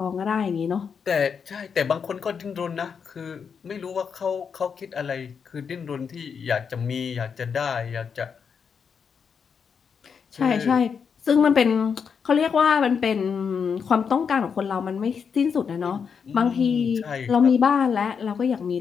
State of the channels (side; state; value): right; quieter; 6.4 dB